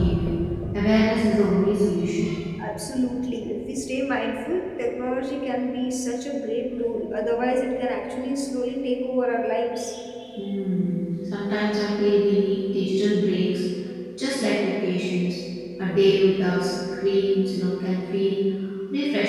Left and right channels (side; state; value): both; identical; correlation 1.00